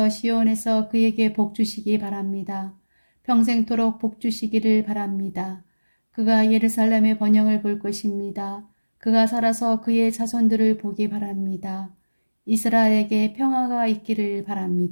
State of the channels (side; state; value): both; inverted; correlation -1.00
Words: 시온에서 그에게 복 주시기 바랍니다. 평생토록 복 주시기를 바랍니다. 그가 예루살렘의 번영을 볼 것입니다. 그가 살아서 그의 자손들을 보기 바랍니다. 이스라엘에게 평화가 있기를